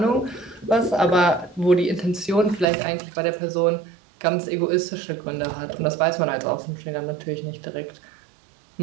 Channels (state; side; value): drops out; left; at 2.7 s